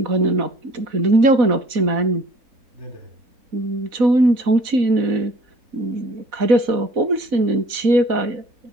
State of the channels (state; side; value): late; left; 4.0 ms